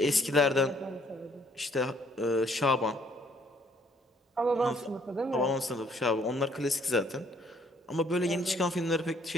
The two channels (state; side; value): normal; both; correlation 0.64